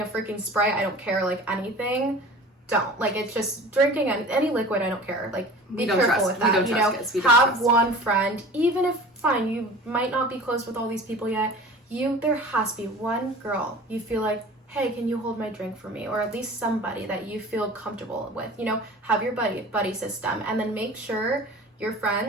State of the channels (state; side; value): normal; both; correlation 0.41